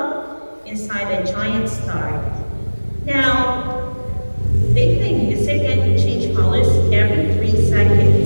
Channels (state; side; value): inverted; both; correlation -1.00